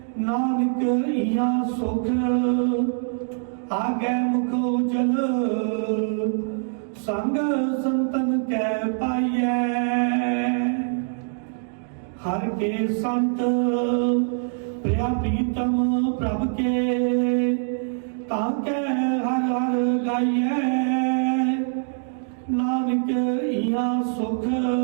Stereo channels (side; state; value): left; silent; digital silence